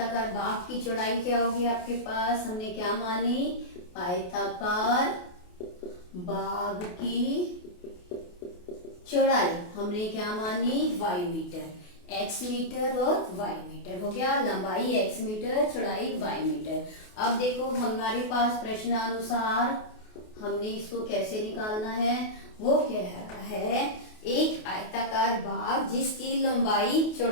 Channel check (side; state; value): right; late; 28 ms